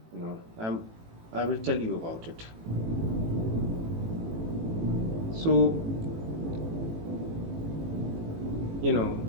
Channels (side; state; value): left; late; 18 ms